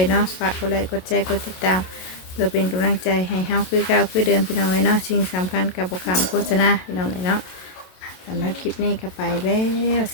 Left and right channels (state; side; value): late; right; 27 ms